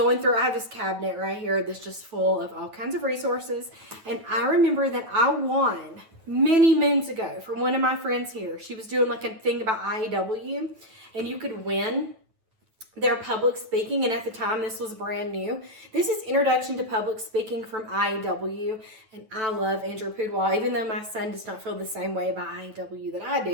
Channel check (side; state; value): left; late; 9.2 ms